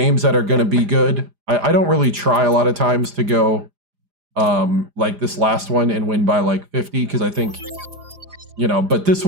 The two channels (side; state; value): left; late; 4.9 ms